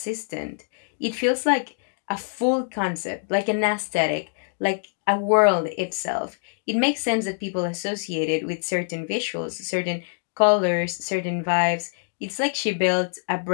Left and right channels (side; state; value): right; silent; digital silence